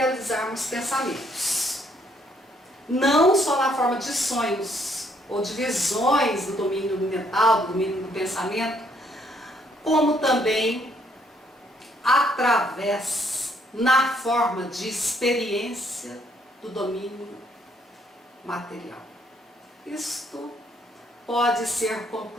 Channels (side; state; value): both; normal; correlation 0.69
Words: pensamentos. Não só na forma de sonhos ou de visões do domínio mental, do domínio do pensamento, como também através, na forma de experiência do domínio material. Isto pode ser